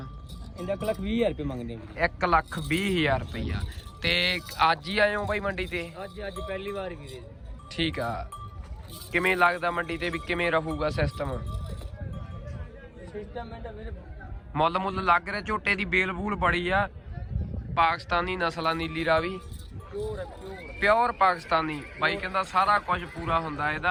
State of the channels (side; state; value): both; identical; correlation 1.00